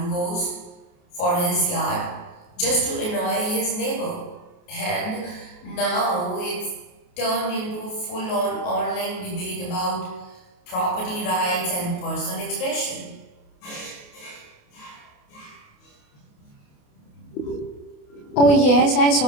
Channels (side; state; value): right; late; 28 ms